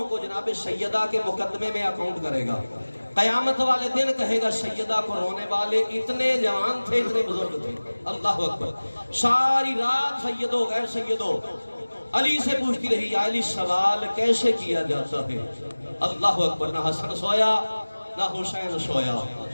کو جناب سیدہ کے مقدمے میں اکاؤنٹ کرے گا قیامت والے دن کہے گا سیدہ کو رونے والے اتنے جوان تھے اتنے بزرگ تھے اللہ اکبر ساری رات سیدو غیر سیدو علی سے پوچھتی رہی یا علی سوال کیسے کیا جاتا ہے اللہ اکبر نہ حسن سویا نہ حسین سویا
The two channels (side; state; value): both; inverted; correlation -1.00